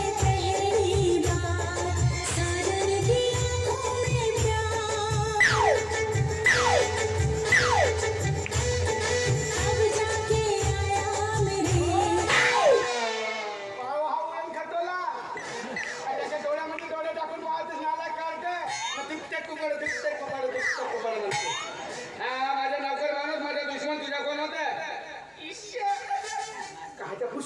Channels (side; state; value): both; identical; correlation 1.00